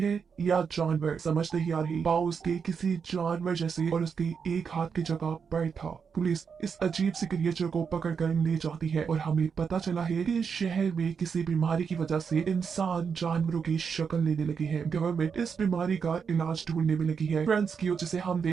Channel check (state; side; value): quieter; left; 6.2 dB